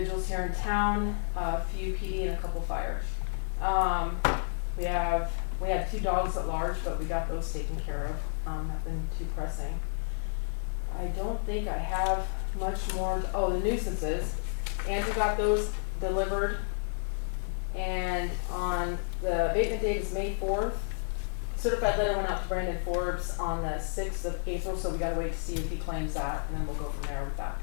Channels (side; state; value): right; silent; 57 dB below the other